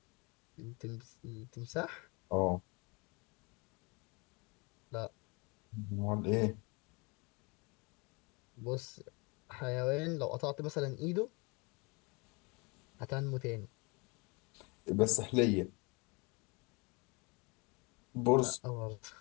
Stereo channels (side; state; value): right; quieter; 28.8 dB